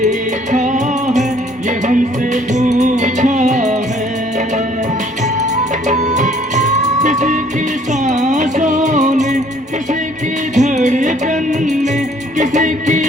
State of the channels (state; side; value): normal; both; correlation 0.60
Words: है, ये हमसे पूछा है। किसी की सांसों ने, किसी की धड़कन ने, किसी की